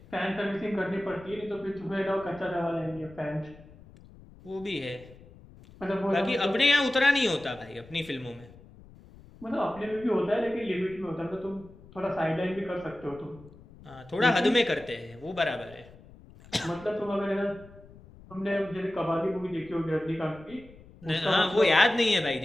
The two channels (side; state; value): left; noise; rumble, 22 dB below the sound